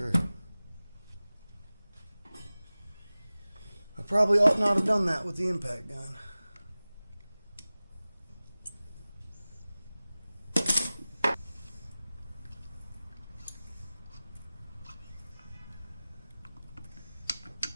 I probably ought not have done that with the impact gun.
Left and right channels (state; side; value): inverted; both; correlation -0.98